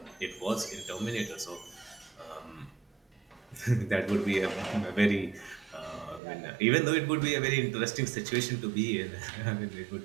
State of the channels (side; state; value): left; drops out; at 6.2 s